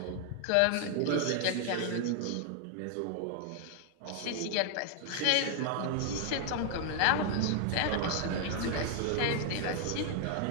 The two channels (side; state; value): both; different; correlation 0.00